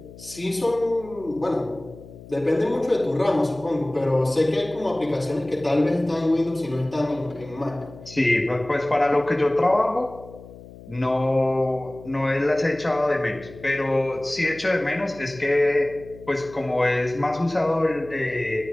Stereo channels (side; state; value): left; noise; hum, 18 dB below the sound